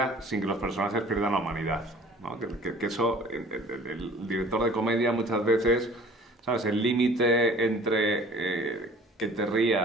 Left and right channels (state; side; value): normal; both; correlation 0.49